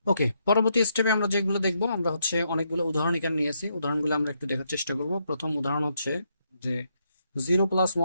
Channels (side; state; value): both; inverted; correlation -0.77